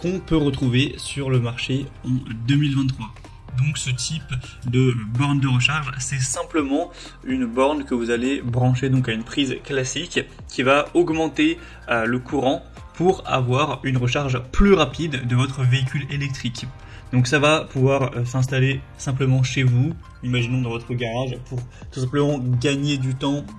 peut retrouver sur le marché en 2023. Donc ce type de borne de recharge, c'est simplement une borne que vous allez brancher donc à une prise classique qui va augmenter le courant pour avoir une recharge plus rapide de votre véhicule électrique. Donc ça va pouvoir s'installer simplement chez vous, imaginons dans votre garage, pour tout simplement gagner du temps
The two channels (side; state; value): both; identical; correlation 1.00